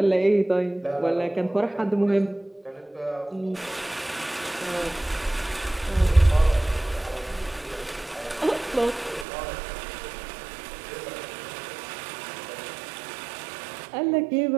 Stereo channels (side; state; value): left; drops out; at 9.2 s